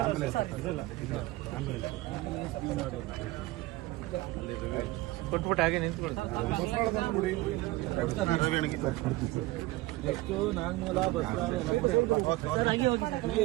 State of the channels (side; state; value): left; quieter; 19.3 dB